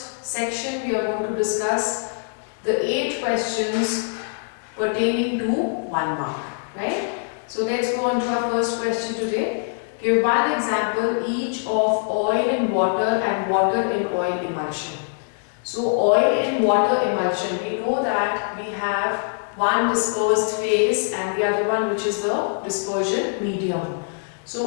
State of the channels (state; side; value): silent; right; 63 dB below the other